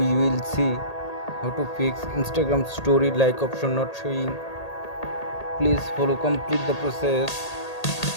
will see how to fix Instagram story like option not showing. Please follow complete the process.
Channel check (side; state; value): right; late; 1.8 ms